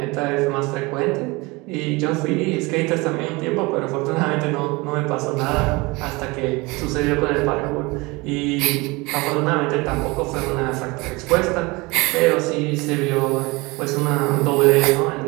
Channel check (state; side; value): quieter; left; 24.5 dB